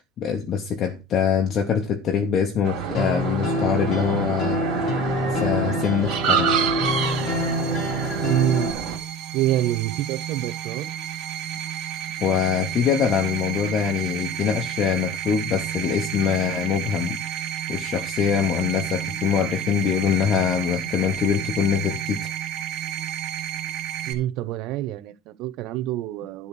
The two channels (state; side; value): normal; both; correlation 0.38